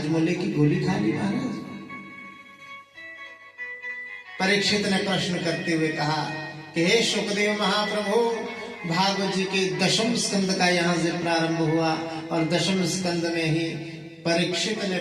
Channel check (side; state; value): both; identical; correlation 1.00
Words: की गोली खा ली महाराज। परीक्षित ने प्रश्न करते हुए कहा कि हे शुकदेव महाप्रभु, भागवत जी के दशम स्कंद का यहाँ से प्रारंभ हुआ और दशम स्कंद में ही परीक्षित ने